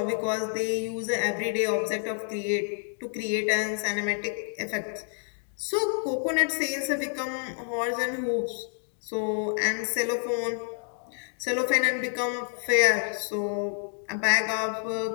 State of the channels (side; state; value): right; silent; digital silence